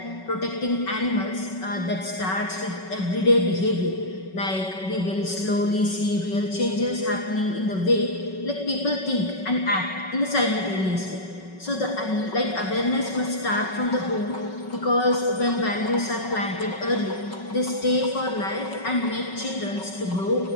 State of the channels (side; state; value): right; late; 5.3 ms